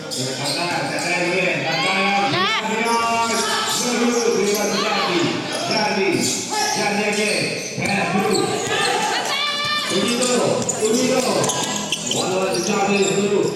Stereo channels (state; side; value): identical; both; correlation 1.00